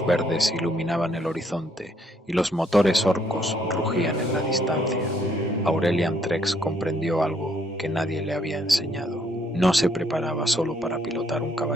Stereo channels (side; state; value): both; normal; correlation 0.69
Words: verdes iluminaban el horizonte y los motores orcos rugían en la distancia, Aurelian Trex comprendió algo que nadie le había enseñado. No se preparaba solo para pilotar un